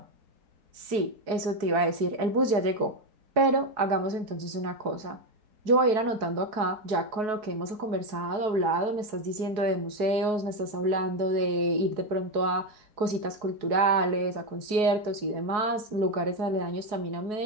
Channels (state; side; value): late; left; 4.7 ms